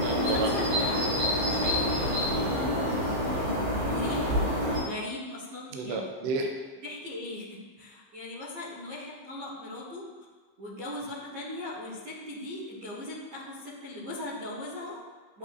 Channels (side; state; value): left; late; 15 ms